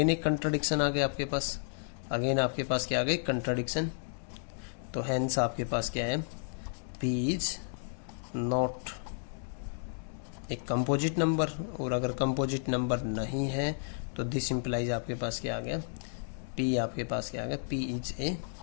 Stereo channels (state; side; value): silent; right; digital silence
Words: एक कंट्राडिक्शन आ गया आपके पास, अगेन आपके पास क्या आ गया, कंट्राडिक्शन। तो हेंस आपके पास क्या है, बी इज नॉट एक कंपोजिट नंबर, और अगर कंपोजिट नंबर नहीं है तो दिस इंप्लाइज आपके पास क्या आ गया, पी आपके पास क्या आ गया, P is a